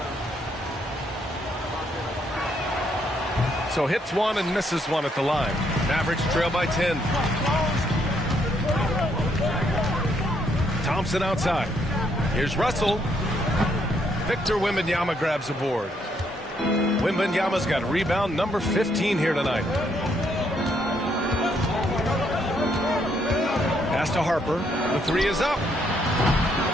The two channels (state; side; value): normal; both; correlation 0.73